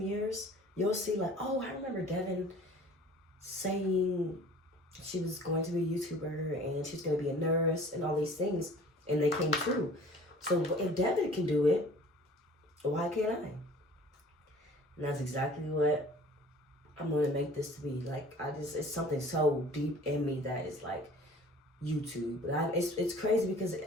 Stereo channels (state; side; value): normal; both; correlation 0.48